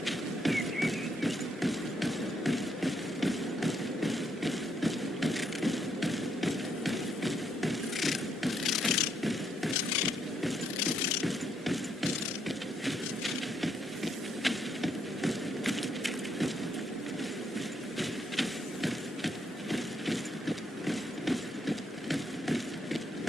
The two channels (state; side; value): normal; both; correlation 0.75